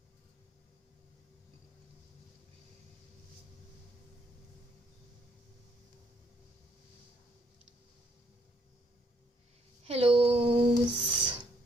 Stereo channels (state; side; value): normal; both; correlation 0.70